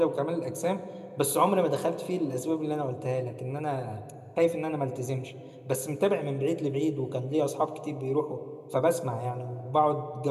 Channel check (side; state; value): both; identical; correlation 1.00